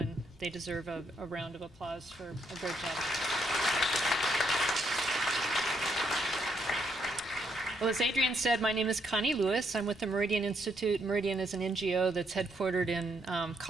they deserve a round of applause for a great job. Well, as Adrian said, my name is Connie Lewis. I'm with the Meridian Institute. Meridian is an NGO that's headquartered in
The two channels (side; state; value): both; normal; correlation 0.75